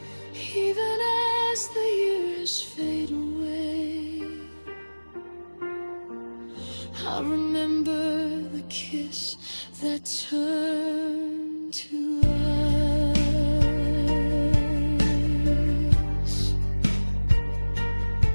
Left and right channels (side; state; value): both; inverted; correlation -1.00